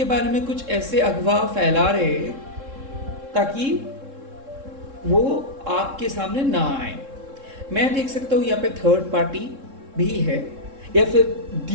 बारे में कुछ ऐसे अफवाह फैला रहे हैं ताकि वो आपके सामने ना आए। मैं देख सकता हूँ यहाँ पे थर्ड पार्टी भी है, या फिर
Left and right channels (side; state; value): left; late; 3.7 ms